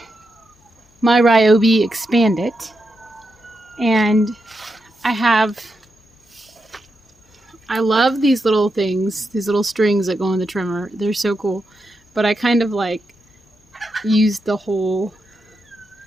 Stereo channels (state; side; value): normal; both; correlation 0.86